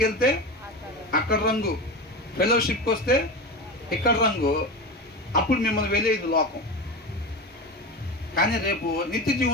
వెళ్తే అక్కడ రంగు, ఫెలోషిప్కి వస్తే ఇక్కడ రంగు. అప్పుడు మిమ్మల్ని వెళ్ళేది లోకం. కానీ రేపు నిత్య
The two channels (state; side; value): normal; both; correlation 0.24